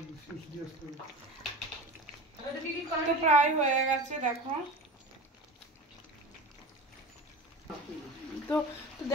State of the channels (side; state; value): both; normal; correlation 0.33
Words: তো প্রায় হয়ে গেছে দেখো। তো